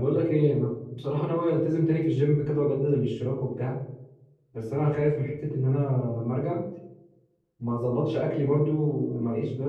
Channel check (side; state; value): both; identical; correlation 1.00